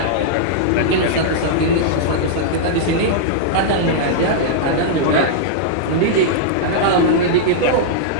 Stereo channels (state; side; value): different; both; correlation -0.02